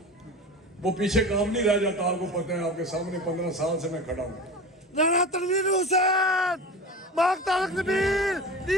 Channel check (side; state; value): both; normal; correlation 0.31